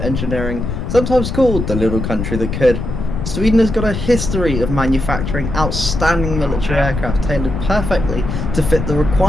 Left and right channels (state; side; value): noise; left; rumble, 4 dB below the sound